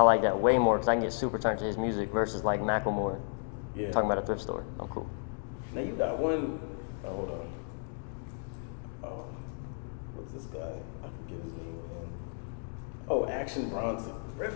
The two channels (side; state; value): right; silent; 55 dB below the other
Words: that way more because I can get super turned to his music versus like Macklemore. Yeah. Talking about a thrift store. I'm cool. Now you got one. Oh, hold on. Oh, what's this guy? I forget his name again. Oh, Action Bronson.